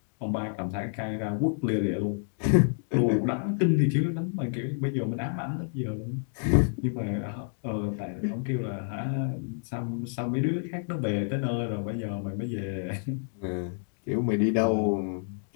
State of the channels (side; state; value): right; silent; digital silence